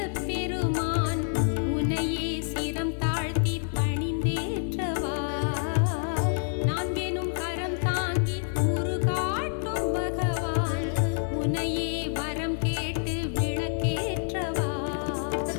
பெருமான் உனையே சிரம் தாழ்த்தி பணிந்தேற்றவா நான்கெனும் கரம் தாங்கி உருகாட்டும் பகவான் உனையே வரம் கேட்டு விளக்கேற்றவா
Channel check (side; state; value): right; silent; digital silence